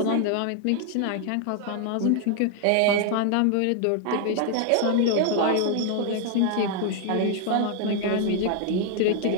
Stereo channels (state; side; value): different; both; correlation 0.00